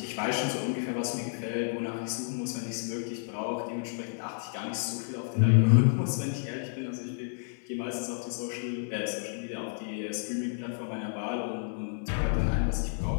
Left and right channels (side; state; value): right; silent; 57 dB below the other